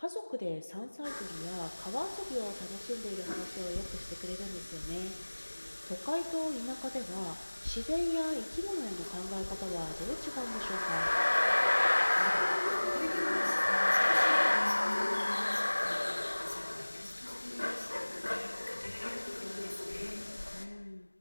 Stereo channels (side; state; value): both; inverted; correlation -1.00